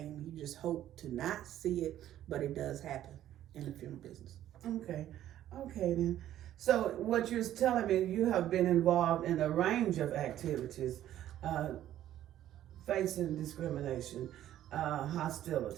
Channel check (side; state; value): left; quieter; 12.3 dB